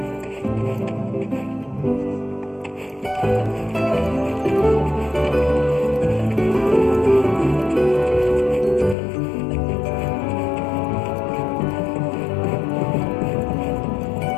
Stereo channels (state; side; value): drops out; right; at 9.0 s